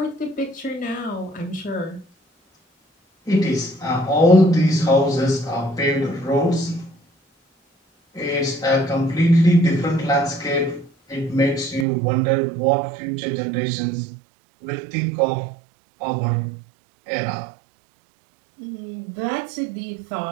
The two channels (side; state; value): left; drops out; at 11.9 s